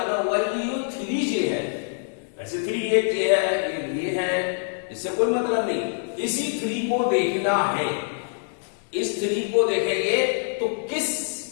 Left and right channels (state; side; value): silent; right; digital silence